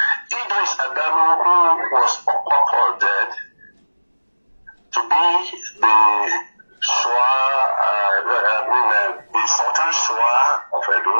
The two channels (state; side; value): inverted; both; correlation -1.00